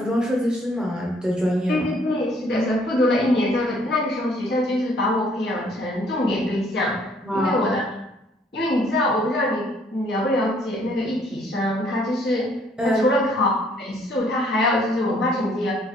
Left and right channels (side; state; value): both; normal; correlation 0.63